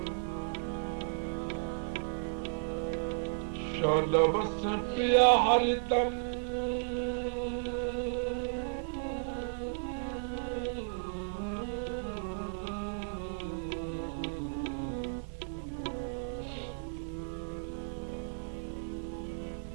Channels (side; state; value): left; silent; 55 dB below the other